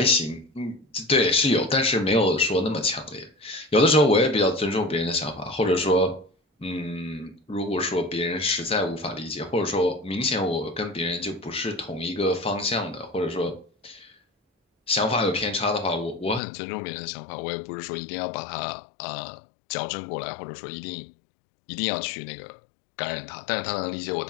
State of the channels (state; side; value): drops out; right; at 16.4 s